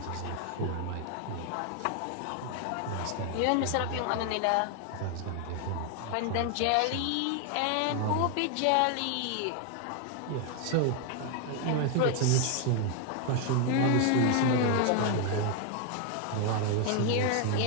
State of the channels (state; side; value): different; both; correlation 0.01